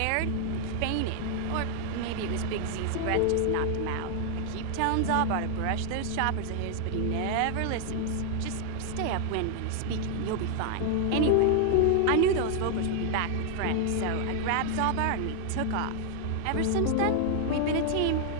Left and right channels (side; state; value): both; different; correlation 0.00